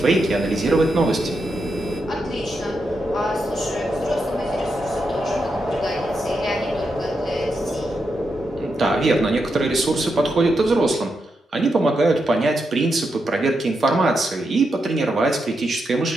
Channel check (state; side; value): normal; both; correlation 0.85